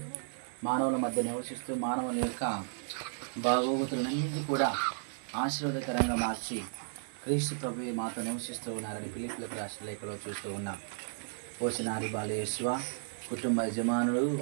మానవుల మధ్య నివసిస్తూ మానవుల యొక్క బాగోగుతులన్నింటినీ కూడా ఆశీర్వాదకరంగా మార్చి క్రీస్తు ప్రభువే మాతో నివసిస్తూ ఉన్నారని ఫిలిప్పీయులకు రాసిన లేఖలో చూస్తూ ఉన్నాం. ఓ చిన్నారి బాలయేసువ కుటుంబ యజమానులు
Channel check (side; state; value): left; silent; digital silence